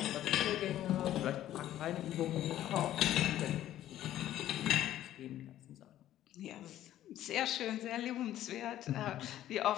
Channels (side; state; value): right; quieter; 12.8 dB